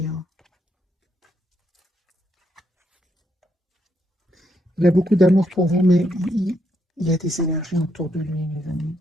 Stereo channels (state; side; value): normal; both; correlation 0.77